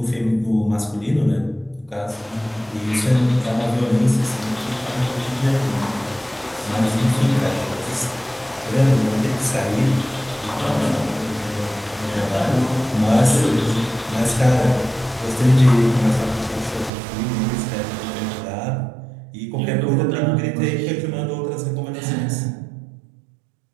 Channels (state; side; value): drops out; left; at 16.9 s